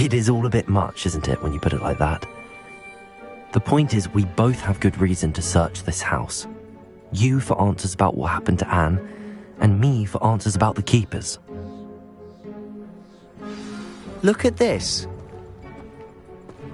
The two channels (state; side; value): identical; both; correlation 1.00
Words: is all a bit much, isn't it, when you put it like that? The point is, we both have good reason to search this house. You for answers about what happened to Anne, and me for answers about the keepers. Look at this.